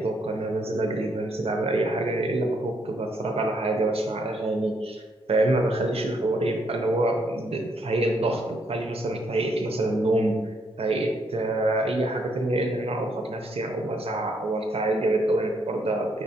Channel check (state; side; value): normal; both; correlation 0.73